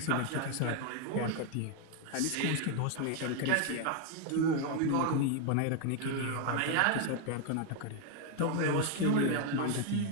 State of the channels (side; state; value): both; different; correlation 0.01